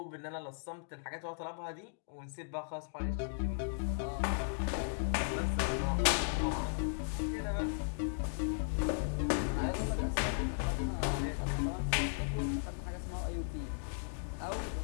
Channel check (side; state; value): right; silent; digital silence